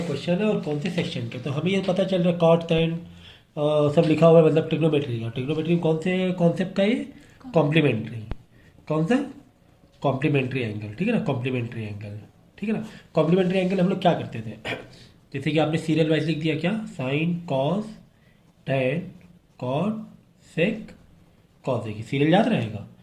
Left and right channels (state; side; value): identical; both; correlation 1.00